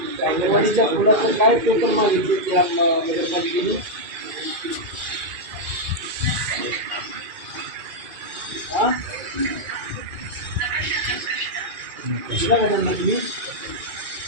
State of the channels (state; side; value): late; left; 2.4 ms